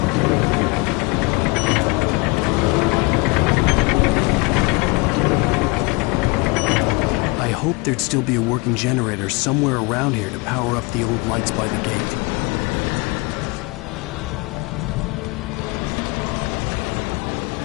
There'd still be a working generator somewhere around here to power up the old lights by the gate.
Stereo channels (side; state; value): right; quieter; 27.2 dB